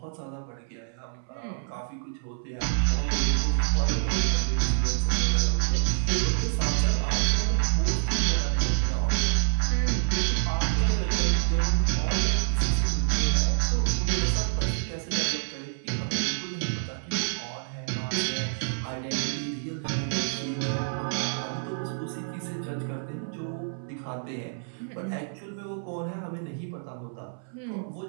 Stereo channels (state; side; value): silent; left; 60 dB below the other